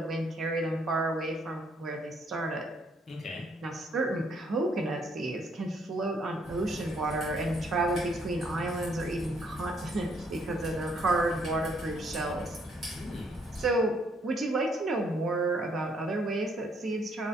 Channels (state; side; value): normal; both; correlation 0.68